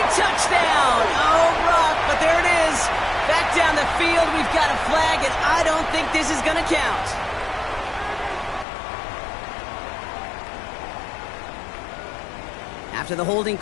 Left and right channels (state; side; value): drops out; right; at 8.7 s